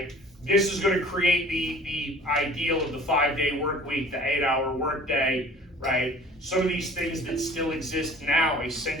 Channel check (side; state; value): both; normal; correlation 0.48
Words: This is going to create the ideal of the 5-day work week, the 8-hour work day, right? Some of these things that still exist now, a